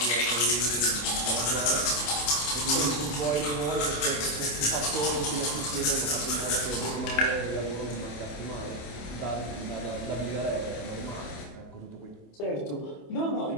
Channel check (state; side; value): late; right; 27 ms